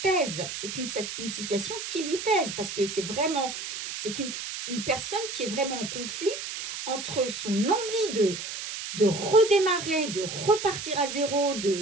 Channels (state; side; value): noise; right; hiss, 7 dB below the sound